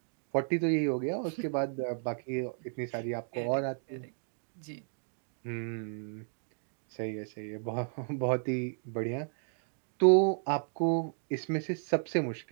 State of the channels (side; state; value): left; silent; digital silence